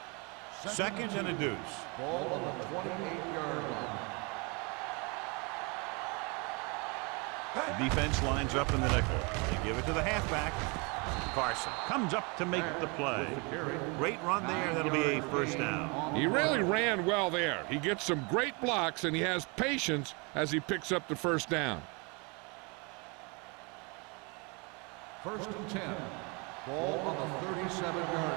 Second and a deuce. Ball on the 28-yard line. The defense lines up in the nickel. They give it to the halfback. Carson comes up to make the play. Great run there. That'll be a first down. He really ran well there. He gets some great blocks, and he has patience as he picks up the first down. First and 10. Ball on the 37-yard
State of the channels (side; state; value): left; quieter; 30.6 dB